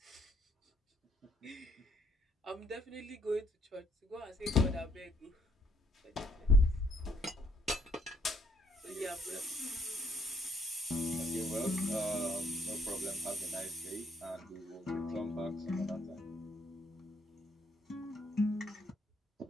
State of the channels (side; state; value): both; normal; correlation 0.68